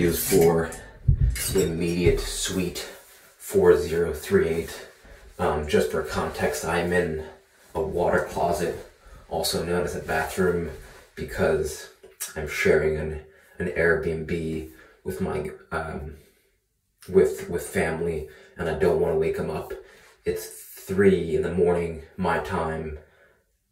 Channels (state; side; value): identical; both; correlation 1.00